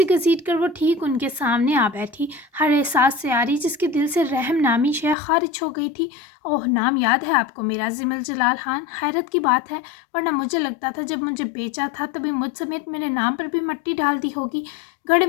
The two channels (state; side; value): drops out; right; at 5.2 s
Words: گھسیٹ کر وہ ٹھیک ان کے سامنے آ بیٹھی، ہر احساس سے آری جس کے دل سے رحم نامی شے خارج ہو گئی تھی۔ اوہ، نام یاد ہے آپ کو میرا؟ ضمل جلال خان، حیرت کی بات ہے، ورنہ مجھے لگتا تھا جب مجھے بیچا تھا تبھی مجھ سمیت میرے نام پر بھی مٹی ڈال دی ہوگی۔ گڑھے